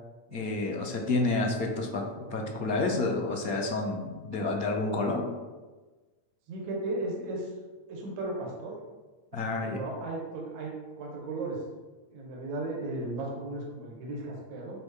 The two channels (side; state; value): left; late; 8.5 ms